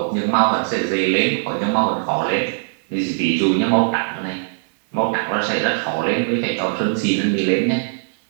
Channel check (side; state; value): left; silent; digital silence